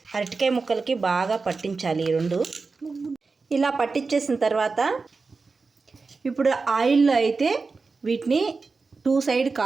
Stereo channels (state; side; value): quieter; left; 4.3 dB